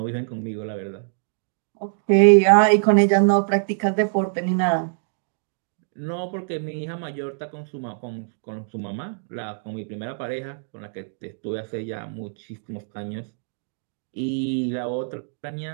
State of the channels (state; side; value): silent; left; digital silence